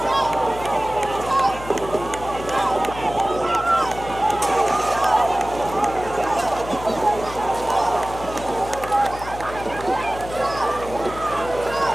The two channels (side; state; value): left; noise; hum, 13 dB below the sound